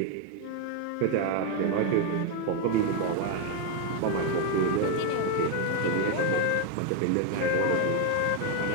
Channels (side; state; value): both; different; correlation 0.01